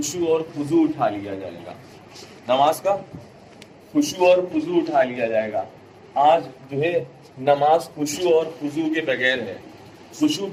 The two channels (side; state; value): both; identical; correlation 1.00